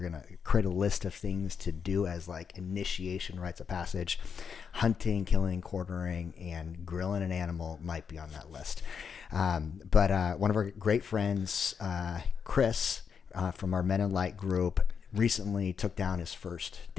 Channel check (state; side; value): quieter; right; 6.6 dB